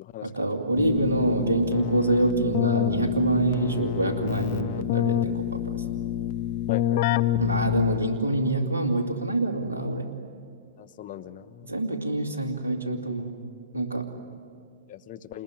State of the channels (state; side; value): inverted; both; correlation -0.44